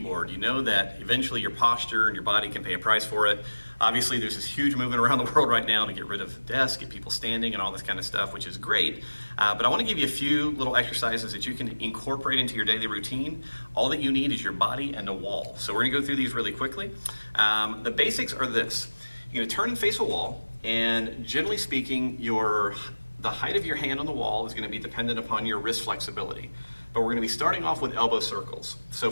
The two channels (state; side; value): inverted; both; correlation -1.00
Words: you know that eventually your posture and your body can pay a price for it. Obviously, there's this huge movement around the world right now to get rid of desks, get people standing and all this kind of stuff, which is great. But I want to give you a few little exercises that you can incorporate into your daily routine. All that you need is your body and a wall. So we're going to go through these really quickly. The basics are this. You're going to turn and face a wall, and generally speaking, the height of your hand on the wall is going to be dependent upon your wrist flexibility. But we're going to be starting off with elbow circles. So